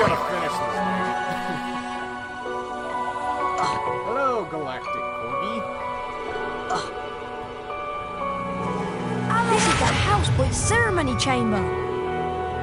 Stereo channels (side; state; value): both; identical; correlation 1.00